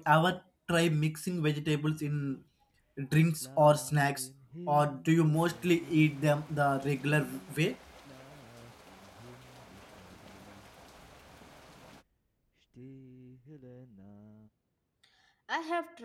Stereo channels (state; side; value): identical; both; correlation 1.00